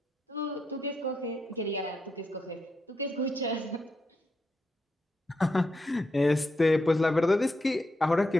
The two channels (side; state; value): both; normal; correlation 0.82